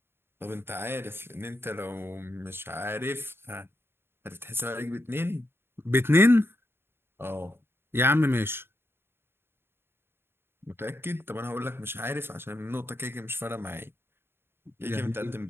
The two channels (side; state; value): left; late; 0.11 ms